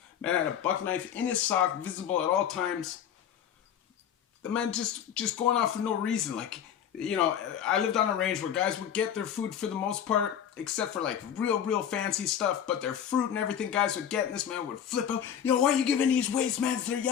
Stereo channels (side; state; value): right; quieter; 9.1 dB